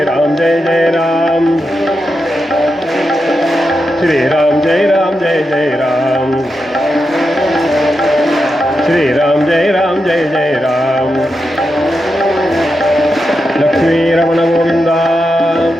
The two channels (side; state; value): both; normal; correlation 0.87